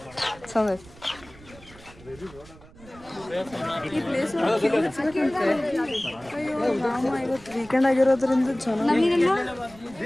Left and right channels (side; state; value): right; noise; rumble, 21 dB below the sound